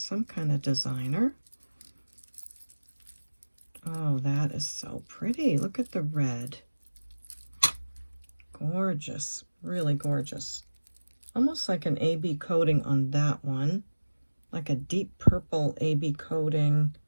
kind of designer. Oh, that is so pretty. Look at the red. Gorgeous. Really gorgeous. Almost like an AB coating on that one. Like a deep purple AB coating.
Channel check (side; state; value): both; inverted; correlation -1.00